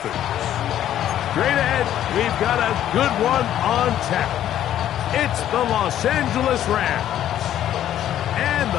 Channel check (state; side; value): quieter; right; 11.5 dB